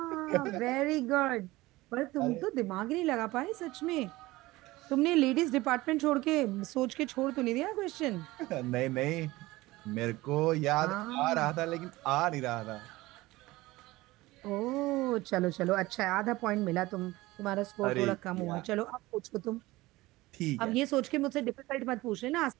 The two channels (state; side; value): quieter; left; 19.3 dB